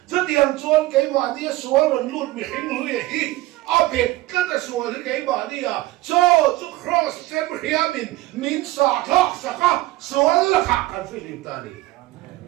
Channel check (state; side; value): quieter; left; 18.0 dB